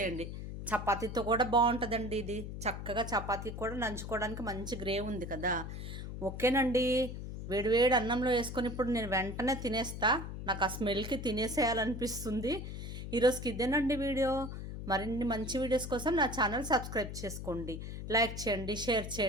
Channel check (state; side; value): noise; left; hum, 7 dB below the sound